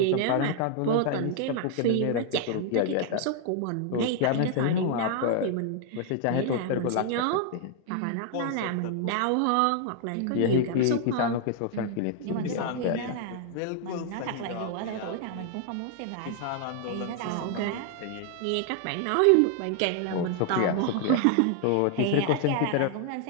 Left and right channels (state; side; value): different; both; correlation 0.00